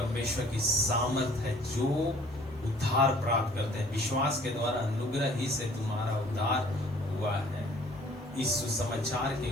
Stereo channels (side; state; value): both; normal; correlation 0.55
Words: की सामर्थ है जो उद्धार प्राप्त करते हैं। विश्वास के द्वारा अनुग्रह ही से तुम्हारा उद्धार हुआ है, इस सुसमाचार के